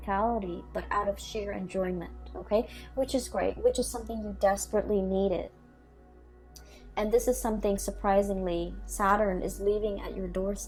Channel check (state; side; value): identical; both; correlation 1.00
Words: but out of sheer enjoyment, okay? Which is great, which is something you desperately needed. And this is something, surprisingly, Saturn is leaving at your